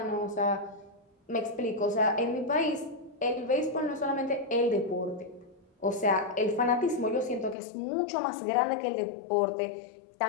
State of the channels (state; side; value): drops out; right; at 7.6 s